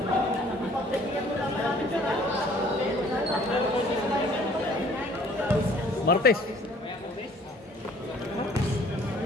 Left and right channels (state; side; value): normal; both; correlation 0.56